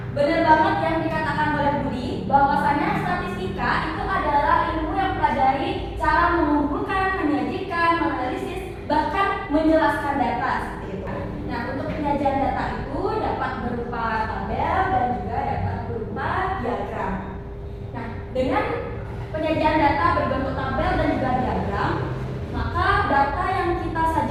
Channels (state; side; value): identical; both; correlation 1.00